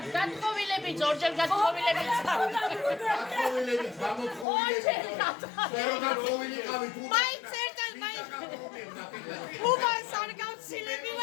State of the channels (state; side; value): drops out; right; at 4.5 s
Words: გათხოვილები ჯორჯერ გათხოვილები მაინც ერთად მაინც უბანს არ გავცილები